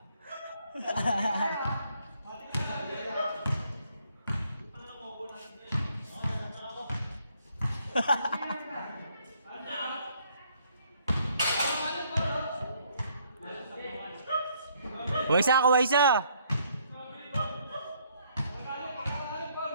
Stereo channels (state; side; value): inverted; both; correlation -0.68